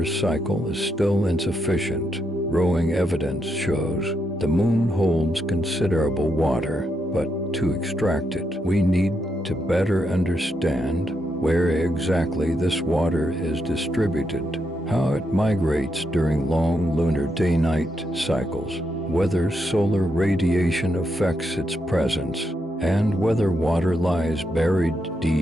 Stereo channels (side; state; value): both; normal; correlation 0.81